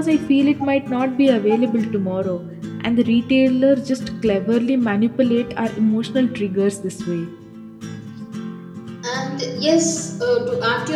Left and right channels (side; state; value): both; identical; correlation 1.00